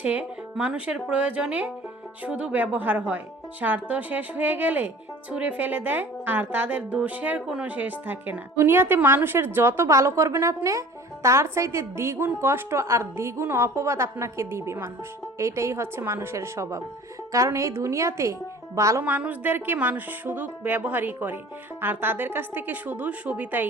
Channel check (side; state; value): both; normal; correlation 0.45